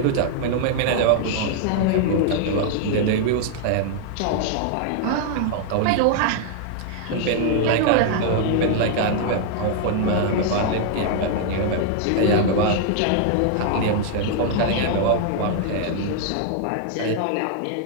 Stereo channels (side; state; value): both; different; correlation -0.01